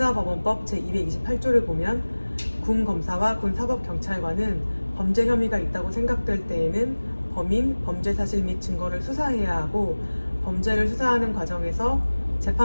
제228조를 보면 군검사와 군사법경찰관은 범죄 혐의가 있다고 생각될 때에는 범인, 범죄 사실 및 증거를 수사해야 하고 범죄를 수사하는 과정에서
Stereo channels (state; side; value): inverted; both; correlation -1.00